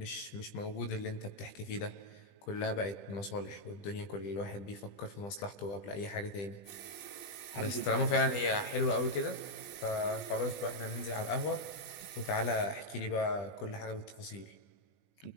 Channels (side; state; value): right; late; 20 ms